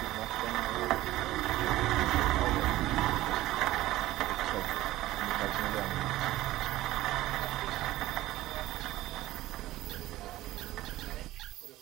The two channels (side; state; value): left; quieter; 16.2 dB